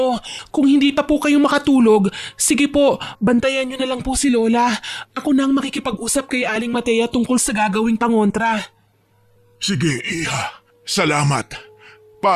Kung hindi pa po kayo makatulog, sige po, bantayan niyo na lang po si Lola. Ako na ang makikipag-usap kay Aling Matea tungkol sa gagawing pangontra. Sige, Iha. Salamat.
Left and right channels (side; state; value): both; identical; correlation 1.00